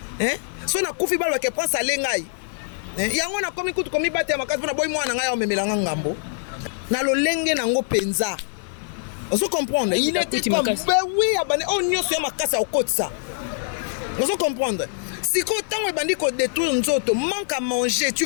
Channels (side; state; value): right; silent; digital silence